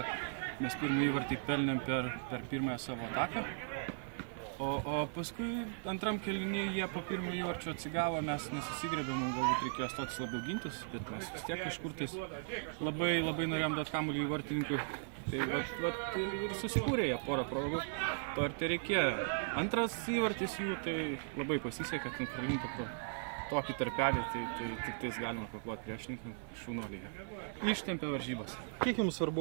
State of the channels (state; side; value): silent; left; 53 dB below the other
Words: Mes pirmą įvartį pelnėm per pirmąją savo ataką. O paskui antram kėlinį jie po pirmo įvarčio atsigavo, mes nesusigrebėm, galbūt reikėjo stotis labiau gintis, bet mes vis tiek kažkur tais labai norėjom duoti kamuolį į vartininkui. Tai ir susikūrė jie porą progų, to ir tai reikėjo. Antras įvartis jų, tai labai pasisekė, kad pralinta pro tokį tarpelį, tai tik tais galima paploti priešininkam šaunuolyje. Ištempė varžybas. Kiek jums